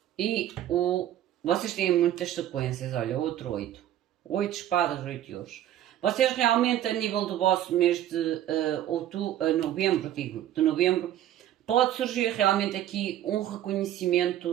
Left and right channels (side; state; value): left; quieter; 12.0 dB